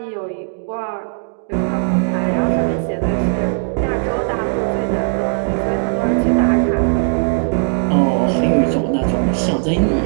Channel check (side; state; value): left; silent; digital silence